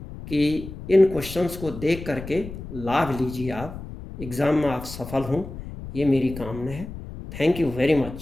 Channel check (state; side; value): noise; left; rumble, 11 dB below the sound